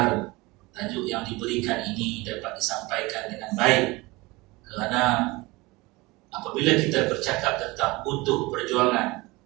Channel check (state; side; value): quieter; left; 22.8 dB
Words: tajuk yang diberikan ini dapat disampaikan dengan baik. Kerana apabila kita bercakap tentang utuh perjuangan